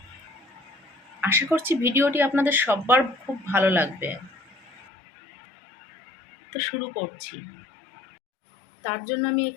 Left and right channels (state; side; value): drops out; right; at 4.7 s